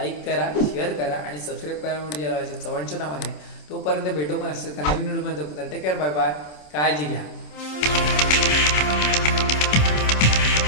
करा शेअर करा आणि सबस्क्राईब करा म्हणजे चव्हाणच्या नावाने. तोपर्यंत भेटू पण असेल नवीन व्हिडिओ मध्ये. टेक केअर बाय बाय काळजी घ्या.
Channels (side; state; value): right; late; 27 ms